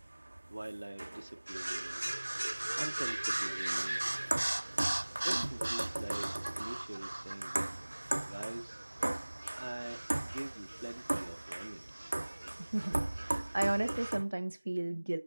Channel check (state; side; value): inverted; both; correlation -1.00